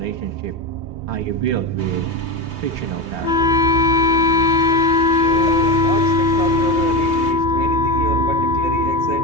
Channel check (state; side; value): late; left; 3.2 ms